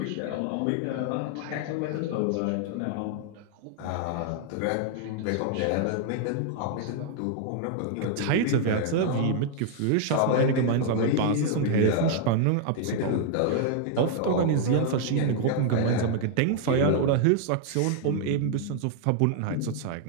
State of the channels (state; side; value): different; both; correlation 0.00